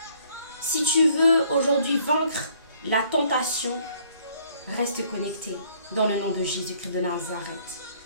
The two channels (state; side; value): inverted; both; correlation -0.62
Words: si tu veux aujourd'hui vaincre la tentation, reste connecté dans le nom de Jésus-Christ de Nazareth.